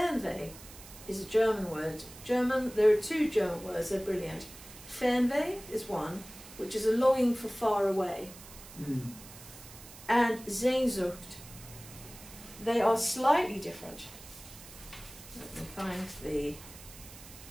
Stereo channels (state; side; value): noise; right; hiss, 17 dB below the sound